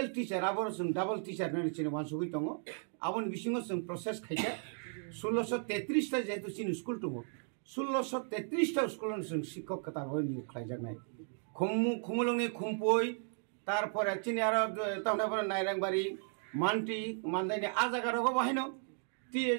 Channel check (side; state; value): left; silent; 54 dB below the other